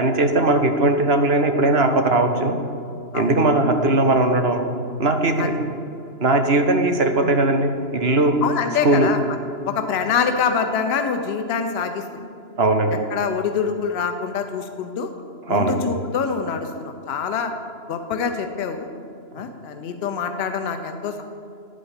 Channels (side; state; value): left; late; 2.9 ms